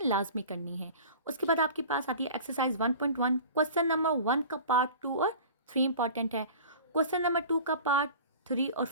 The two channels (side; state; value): both; inverted; correlation -0.40